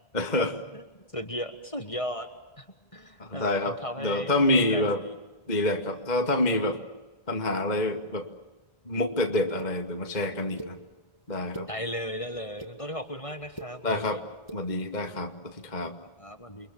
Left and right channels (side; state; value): right; late; 2.0 ms